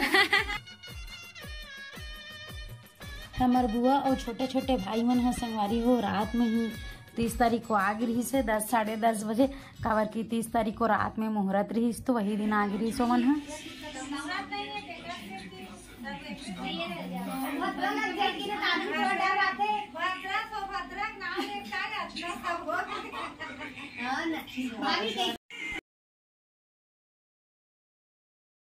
हमार बुआ और छोटे छोटे भाई मन है संगवारी हो, रात में ही 30 तारीख को आग रही से 10 साढ़े 10 बजे। काबर की 30 तारीख को रात में मुहूर्त रही तो वही दिन आग रही सो मन है।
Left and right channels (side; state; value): both; identical; correlation 1.00